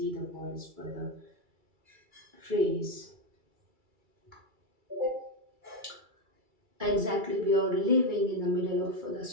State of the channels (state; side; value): late; left; 2.3 ms